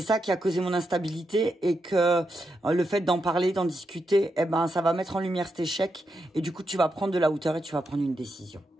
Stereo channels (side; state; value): both; normal; correlation 0.84